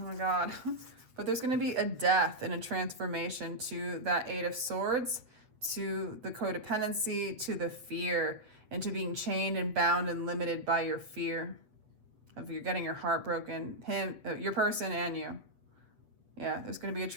my God. But there's going to be a death and a transformation to that 8 of Swords, to the codependency, to the fear, and to being chained and bound and limited by your fear of you're getting your heart broken, your person and you. Yeah, there's going to be a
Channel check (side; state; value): left; late; 8.1 ms